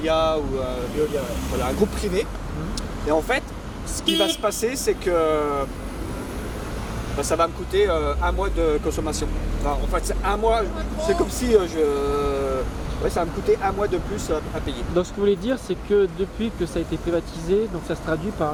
ou voilà, un groupe privé. Et en fait, ce qui va se passer, c'est que ça va me coûter un mois de consommation. Enfin, en fait, c'est un mois, c'est comme si ça va me coûter un mois de plus à payer. Donc ce que vous voulez dire c'est que depuis que ça a été privatisé, donc ça se traduit par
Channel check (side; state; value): both; identical; correlation 1.00